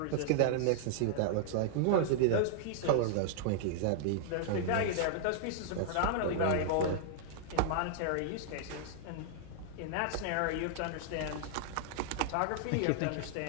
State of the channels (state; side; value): different; both; correlation -0.01